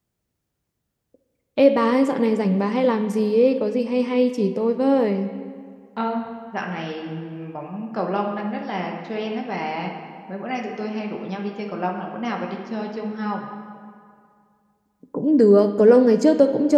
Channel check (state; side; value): identical; both; correlation 1.00